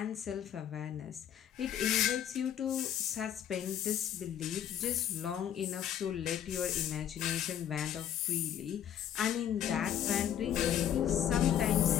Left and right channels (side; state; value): right; quieter; 10.0 dB